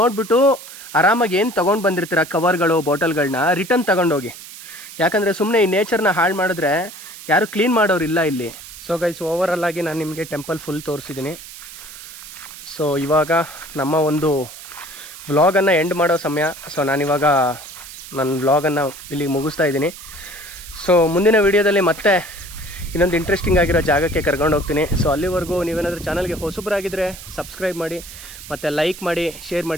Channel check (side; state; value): right; noise; hiss, 15 dB below the sound